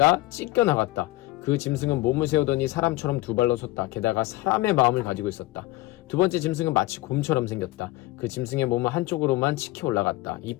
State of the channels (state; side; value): quieter; right; 18.5 dB